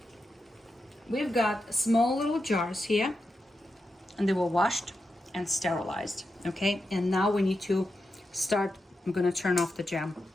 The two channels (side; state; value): both; normal; correlation 0.88